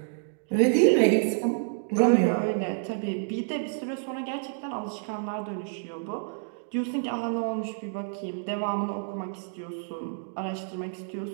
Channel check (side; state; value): left; silent; digital silence